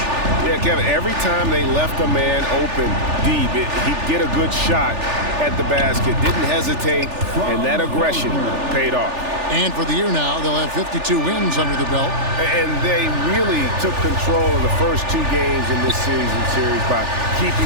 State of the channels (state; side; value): late; left; 3.4 ms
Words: Yeah, Kevin, every time they left a man open deep, he'd get a good shot at the basket. Didn't hesitate, and that aggression paid off. And for the year now, they'll have 52 wins under the belt. And they really took control of the first 2 games in this series by